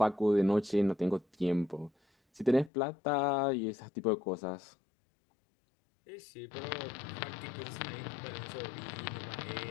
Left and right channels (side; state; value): right; drops out; at 2.7 s